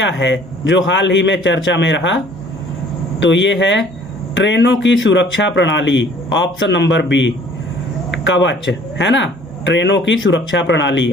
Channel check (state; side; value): normal; both; correlation 0.54